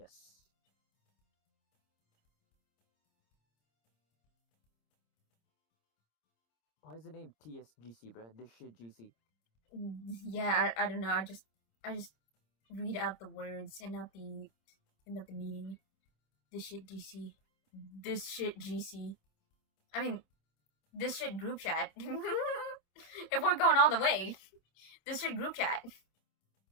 Why is the name TSGC, bruh? This shit GC. Yeah, I don't know. I just read out the words and not the meaning. This shit GC. This shit GC. I mean, this shit group chat. If we're going all the way, this shit group chat.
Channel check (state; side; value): late; right; 26 ms